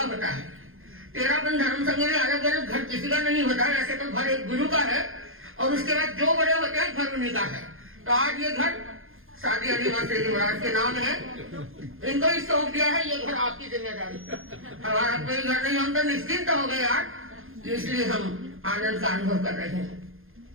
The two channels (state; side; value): late; left; 0.60 ms